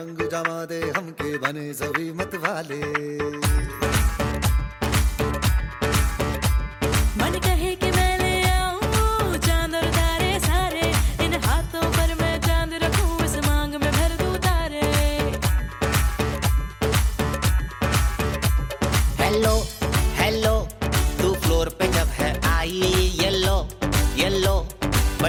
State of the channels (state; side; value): identical; both; correlation 1.00